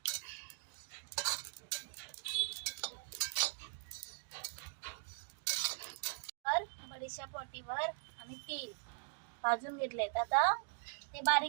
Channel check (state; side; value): silent; left; digital silence